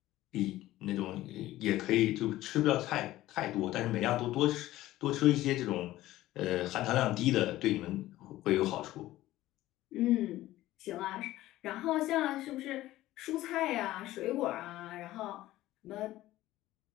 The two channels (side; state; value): right; quieter; 15.7 dB